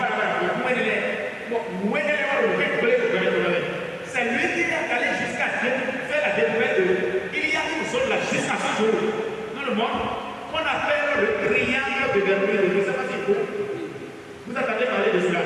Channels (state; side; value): identical; both; correlation 1.00